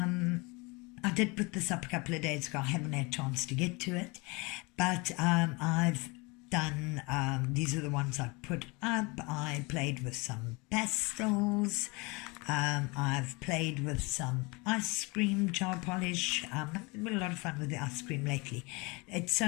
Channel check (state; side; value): quieter; right; 27.2 dB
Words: did put this up a couple of days ago. I haven't had a chance to get to it, but I've done, these are the ones I put up. I played with some pastels. I've played with some ice cream jar polish. I've had a lot of fun with the ice cream lately. It's